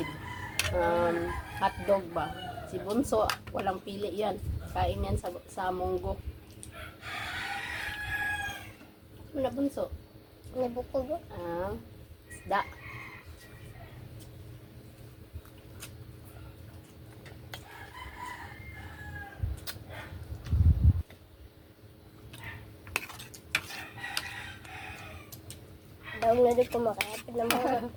hotdog ba. Si Bunso, walang pili yan. Kain yan sa munggo. Ano na Bunso? Nabukog. Isda. Daw na din kumakapit na mga.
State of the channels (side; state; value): both; identical; correlation 1.00